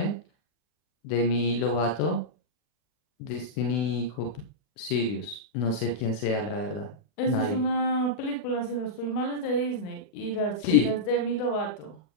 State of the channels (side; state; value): right; late; 40 ms